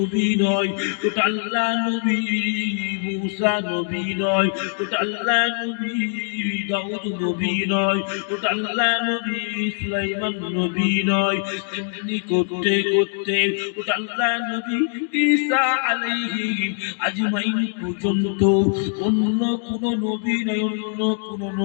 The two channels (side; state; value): right; silent; 56 dB below the other